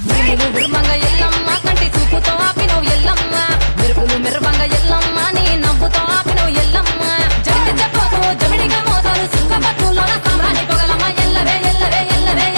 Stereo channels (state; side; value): inverted; both; correlation -1.00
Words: నువ్వు ఉర్మంగ ఎల్లమ్మ కంటి చూపుతో ఆపినవు ఎల్లమ్మ మెరుపులు మెరువంగ ఎల్లమ్మ నీ నవ్వుతో ఆపినవు ఎల్లమ్మ జడికి చెప్పదు జమిడిగా మోతాలు సుంగపట్టులోన సామ్రాణి పొగలమ్మ ఎల్లవే ఎల్లవే ఎల్లవే